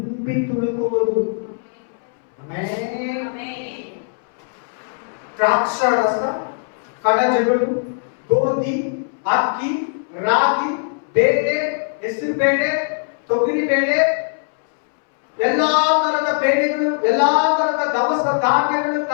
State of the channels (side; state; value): right; silent; 66 dB below the other